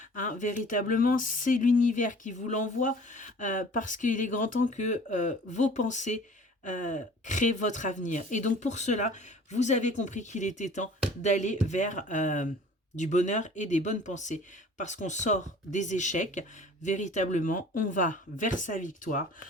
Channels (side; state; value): both; normal; correlation 0.47